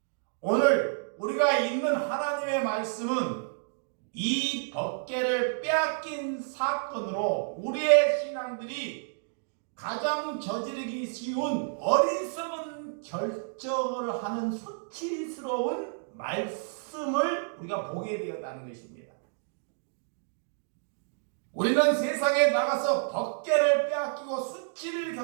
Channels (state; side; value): silent; left; digital silence